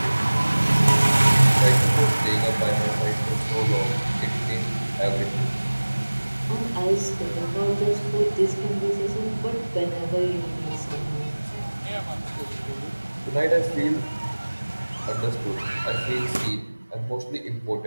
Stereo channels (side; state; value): both; inverted; correlation -1.00